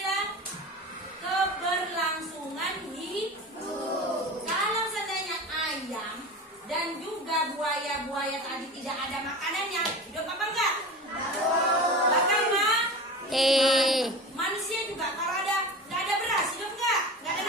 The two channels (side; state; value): both; normal; correlation 0.32